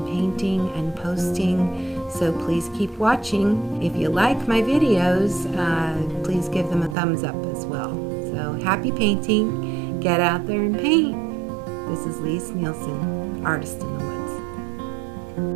painting and posting, so please keep watching. If you like my videos, please give them a thumbs up as well. So happy painting. Get out there and paint. This is Lise Nielsen, Artist in the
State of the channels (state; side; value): drops out; left; at 7.0 s